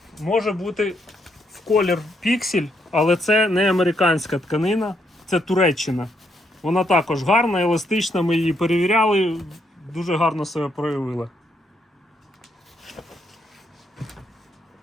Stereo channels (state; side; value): normal; both; correlation 0.76